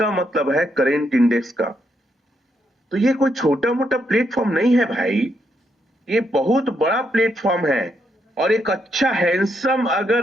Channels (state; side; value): normal; both; correlation 0.78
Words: मतलब है करेंट इंडेक्स का। तो ये कोई छोटा मोटा प्लेटफॉर्म नहीं है भाई, ये बहुत बड़ा प्लेटफॉर्म है। और एक अच्छा हैंडसम